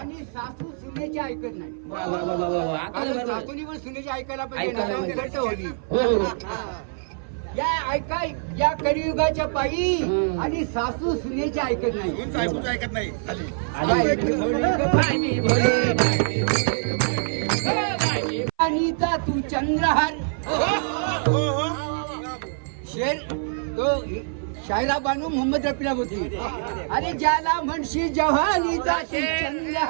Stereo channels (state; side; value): silent; left; 58 dB below the other